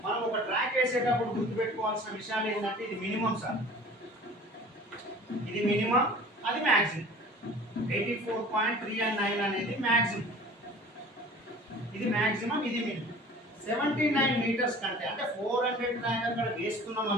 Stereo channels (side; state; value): both; normal; correlation 0.44